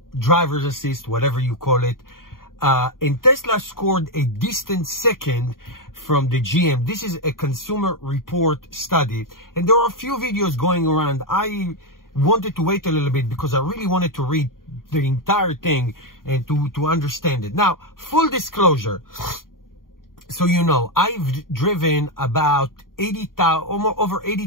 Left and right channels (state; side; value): late; right; 0.91 ms